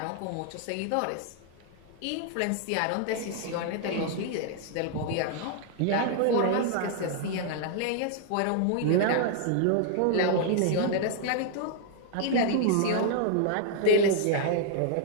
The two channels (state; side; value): different; both; correlation -0.01